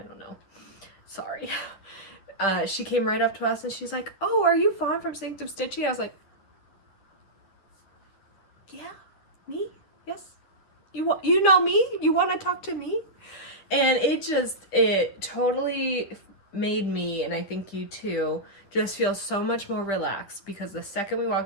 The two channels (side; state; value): right; late; 10 ms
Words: know. Sorry. She came right up to us and she's like, "Oh, are you Fawn from Sanctum Stitchy?" I was like, "Yeah, me? Yes. You know me? You want to talk to me?" And it totally made me, and I think you too, just feel so much more relaxed, because the second we